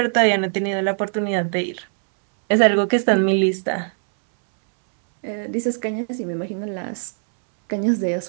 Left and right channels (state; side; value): silent; left; 63 dB below the other